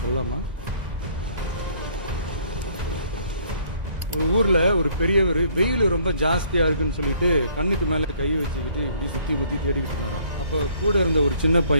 சொல்லாமா? ஒரு ஊர்ல ஒரு பெரியவர் வெயில் ரொம்ப ஜாஸ்தியா இருக்குன்னு சொல்லிட்டு கண்ணுக்கு மேல கை வச்சுக்கிட்டு இப்படி சுத்தி முத்தி தேடிக்கிட்டு இருந்தாராம். அப்ப கூட இருந்த ஒரு சின்ன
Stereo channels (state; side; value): late; left; 1.9 ms